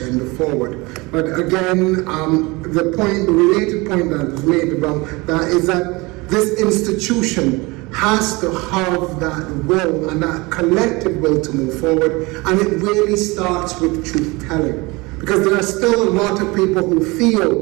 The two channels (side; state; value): left; quieter; 24.3 dB